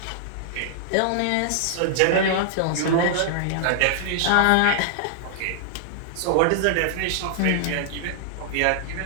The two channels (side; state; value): both; different; correlation 0.00